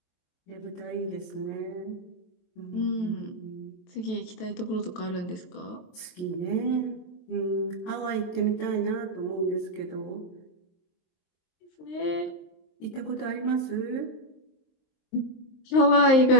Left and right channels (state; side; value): late; right; 23 ms